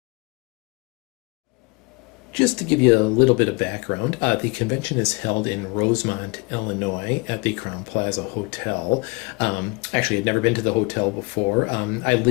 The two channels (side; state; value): right; quieter; 27.3 dB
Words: Just to give you a little bit of background, the convention is held in Rosemont, Illinois at the Crown Plaza Hotel. Actually, I'd never been to the hotel before. I